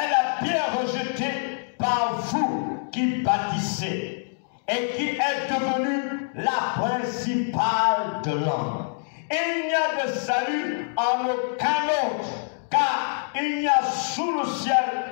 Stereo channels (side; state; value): right; silent; digital silence